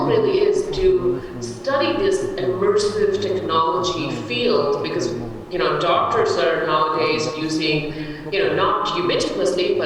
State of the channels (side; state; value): both; identical; correlation 1.00